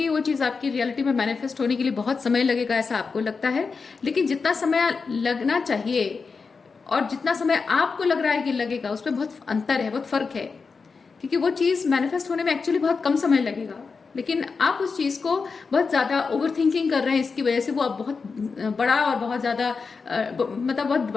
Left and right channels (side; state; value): right; quieter; 4.9 dB